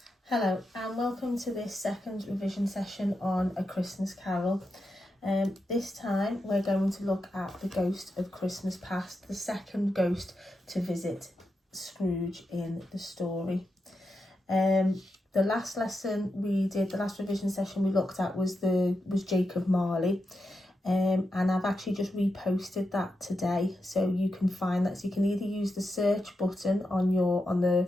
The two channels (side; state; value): both; normal; correlation 0.87